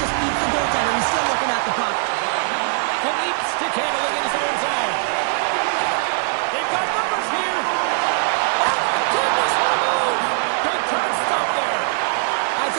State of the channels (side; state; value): left; silent; digital silence